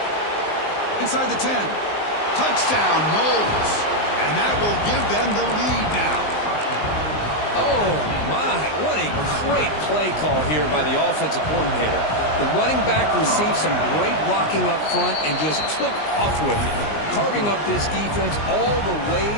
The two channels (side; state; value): right; late; 19 ms